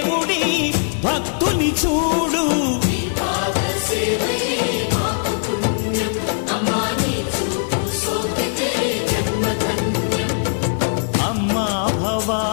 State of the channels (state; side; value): silent; right; digital silence